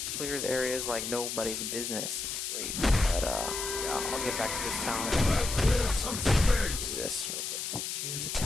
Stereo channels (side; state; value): left; noise; hiss, 4 dB below the sound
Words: Clears areas like nobody's business. It's great. But yeah, I'll get back to this talent. Do this real quick. Choose a